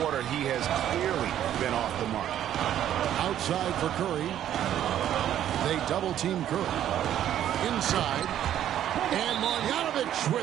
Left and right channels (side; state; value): left; quieter; 11.1 dB